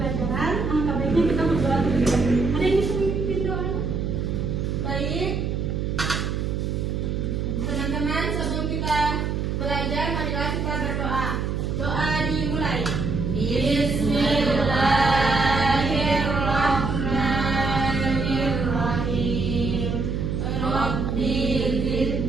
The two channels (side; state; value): right; noise; hum, 1 dB below the sound